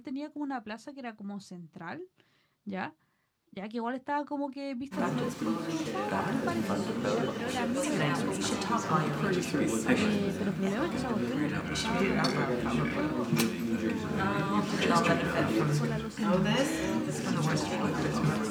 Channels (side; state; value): both; identical; correlation 1.00